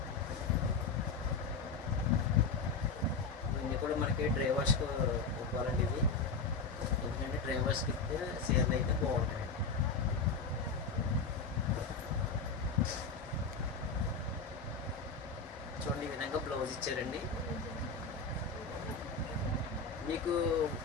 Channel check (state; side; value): quieter; right; 4.4 dB